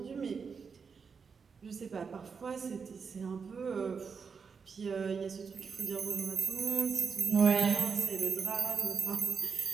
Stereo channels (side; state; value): left; quieter; 5.7 dB